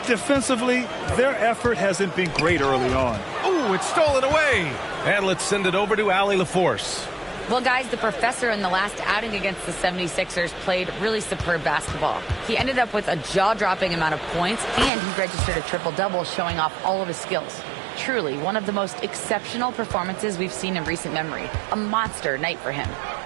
Defensively, their effort hasn't been great early on. Ooh, it's stolen away. And let's send it over to Allie LaForce. Well, guys, the professor in the last outing against the 76ers played really superb basketball. He ended up with a jaw-dropping amount of points, and he registered a triple-double, showing off all of his skills. Truly, one of the most exceptional performances we've seen in recent memory. A monster night for him.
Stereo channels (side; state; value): left; drops out; at 14.9 s